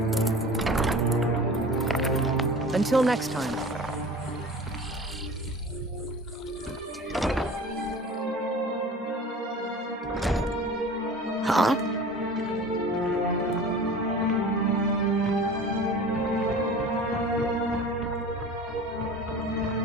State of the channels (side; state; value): both; normal; correlation 0.39